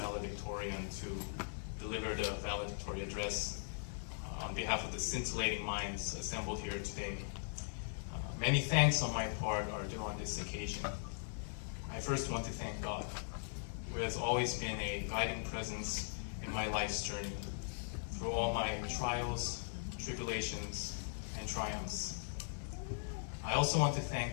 to deliver the valedictorian address on behalf of the scintillating minds assembled here today. Many thanks on my part are due on this occasion. I first want to thank God, who has always been a guiding presence in my life's journey, through all my trials, tribulations, and triumphs. I also want to thank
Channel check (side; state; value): right; silent; digital silence